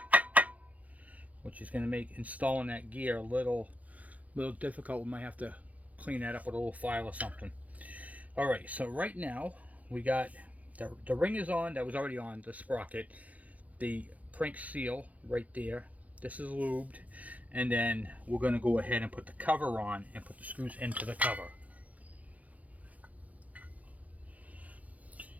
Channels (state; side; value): late; left; 0.072 ms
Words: which is going to make installing that gear a little difficult. We might have to clean that up with a little file or something. All right, so right now we got the ring is on. That was already on the sprocket. The crank seal right there. This is lubed, and then we're going to go ahead and put the cover on and put the screws into the cover.